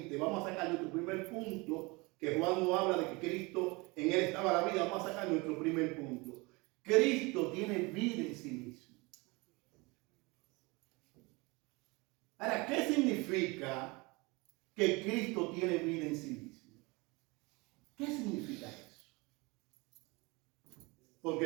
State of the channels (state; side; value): quieter; left; 25.7 dB